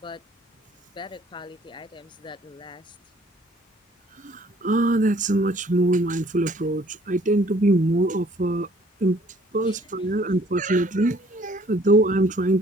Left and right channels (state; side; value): normal; both; correlation 0.59